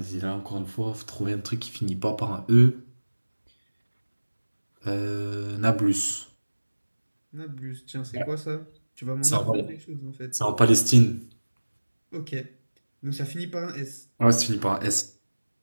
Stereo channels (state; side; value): inverted; both; correlation -1.00